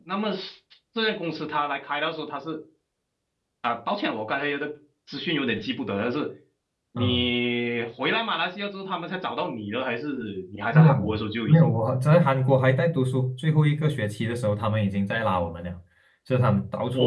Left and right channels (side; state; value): both; identical; correlation 1.00